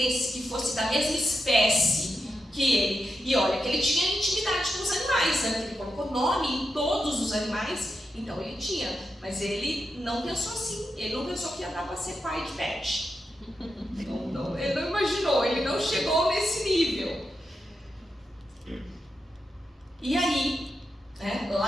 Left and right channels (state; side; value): normal; both; correlation 0.87